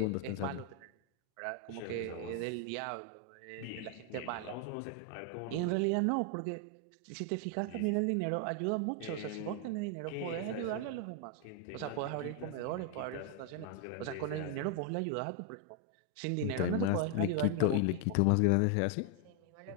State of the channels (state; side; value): different; both; correlation 0.00